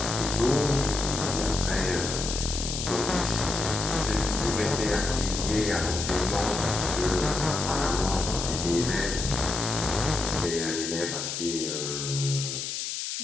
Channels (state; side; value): noise; left; hiss, 4 dB below the sound